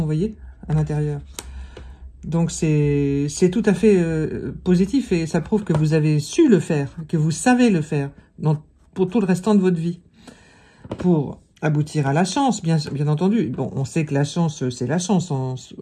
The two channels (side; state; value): both; identical; correlation 1.00